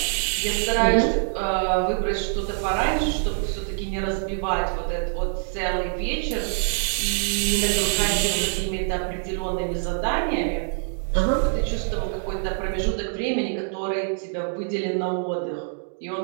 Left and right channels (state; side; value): silent; left; digital silence